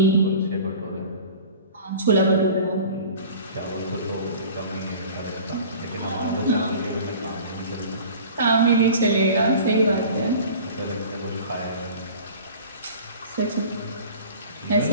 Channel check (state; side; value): inverted; both; correlation -0.42